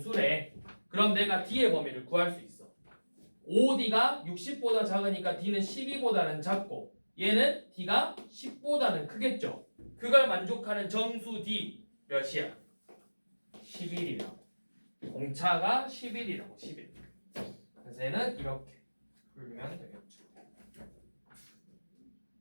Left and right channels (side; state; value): both; inverted; correlation -1.00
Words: 그럼 내가 D의 범위를 구할 수 있어. 5D가 60보다 작으니까 D는 12보다는 작고 얘는 D가 10보다는 크겠죠. 그걸 만족하는 정수 D 몇이야? 11이라고. 공차가 11이라고. 11. 그래서 얘는 이렇게 풀면 되겠죠.